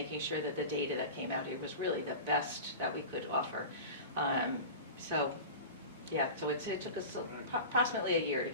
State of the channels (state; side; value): inverted; both; correlation -0.31